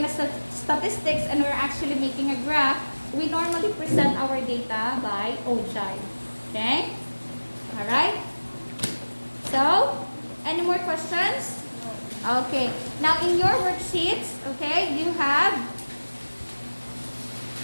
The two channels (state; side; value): inverted; both; correlation -1.00